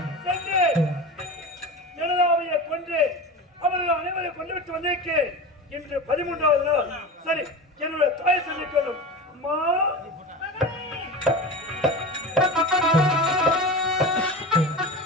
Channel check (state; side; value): normal; both; correlation 0.29